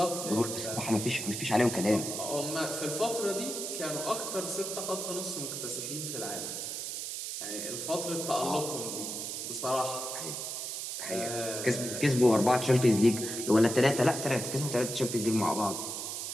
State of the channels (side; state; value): right; noise; hiss, 5 dB below the sound